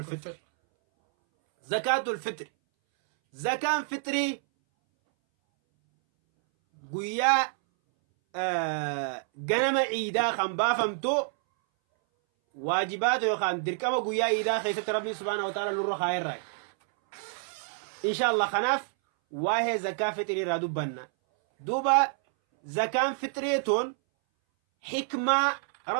زكاة الفطر زكاة فطري قويا ganama ciidaa kan baafamtu waajibaata yookaan dirqama guyyaa ciidaa keessatti rabbiin subhaanahu wa ta'ala nurra kaayerraa inshallah kanaaf waa'ee zakaa fitrii irraa dubbanna duuba zakaan fitriituun hikmaa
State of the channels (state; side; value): silent; left; 59 dB below the other